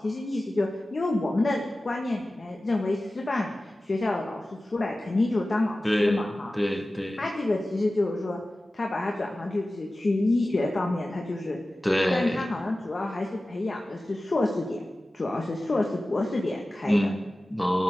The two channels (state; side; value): normal; both; correlation 0.96